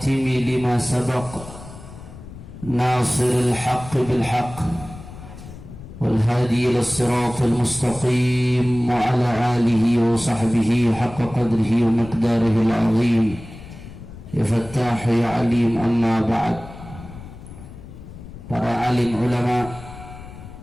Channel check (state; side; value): noise; left; rumble, 15 dB below the sound